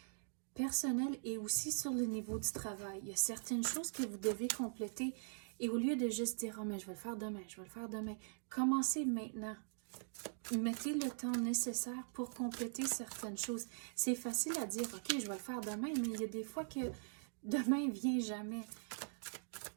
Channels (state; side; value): silent; left; digital silence